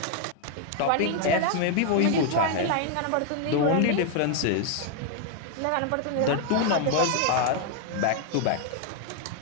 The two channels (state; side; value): different; both; correlation 0.00